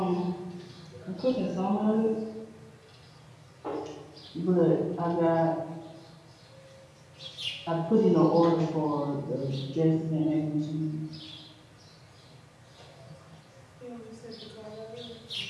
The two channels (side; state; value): both; identical; correlation 1.00